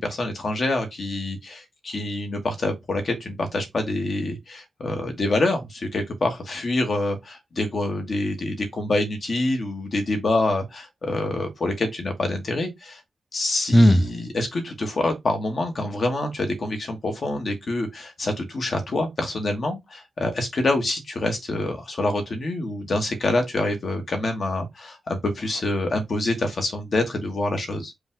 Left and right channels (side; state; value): both; normal; correlation 0.88